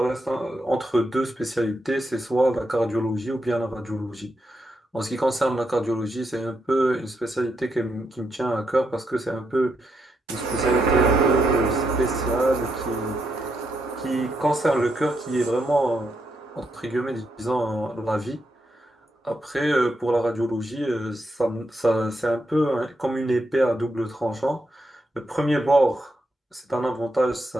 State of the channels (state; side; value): normal; both; correlation 0.81